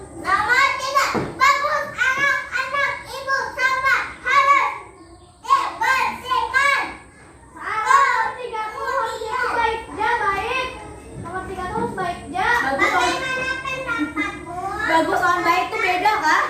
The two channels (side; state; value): both; identical; correlation 1.00